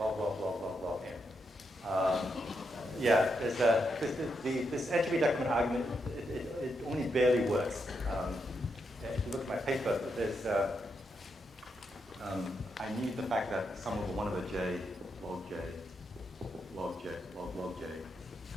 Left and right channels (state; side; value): normal; both; correlation 0.82